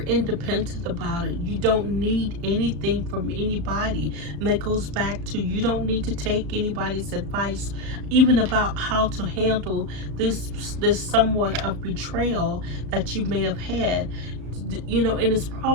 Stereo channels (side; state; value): left; late; 34 ms